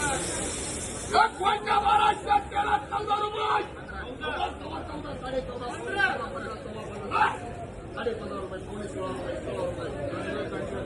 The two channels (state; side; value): identical; both; correlation 1.00